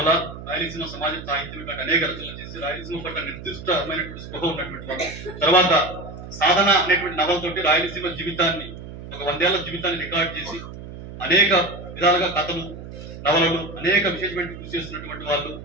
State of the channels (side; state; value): right; noise; hum, 12 dB below the sound